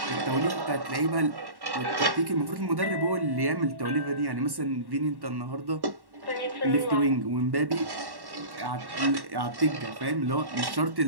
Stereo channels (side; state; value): left; late; 1.1 ms